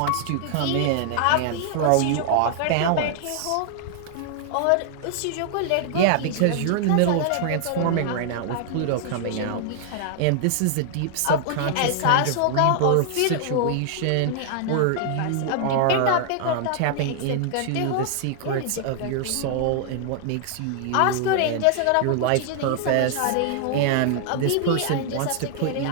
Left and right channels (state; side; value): different; both; correlation 0.00